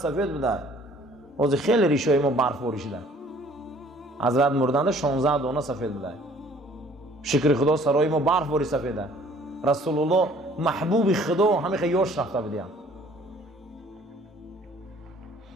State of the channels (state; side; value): normal; both; correlation 0.55